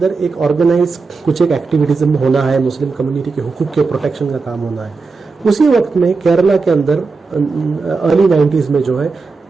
एक ऑर्गेनाइज कुछ एक एक्टिविटीज्म होना है, मुस्लिम कम्युनिटी के हुकूक के प्रोटेक्शन का काम होना है। उसी वक्त में केरला के अंदर अर्ली 90s में जो है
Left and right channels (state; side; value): quieter; left; 4.3 dB